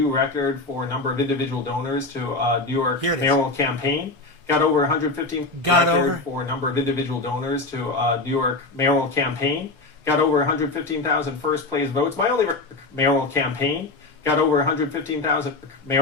record for a number of individual donors to New York mayoral campaign. got over 115 record for a number of individual donors to New York mayoral campaign, got over 115,000 first place votes. My only mayoral campaign got over 115,000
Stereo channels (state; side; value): quieter; right; 3.3 dB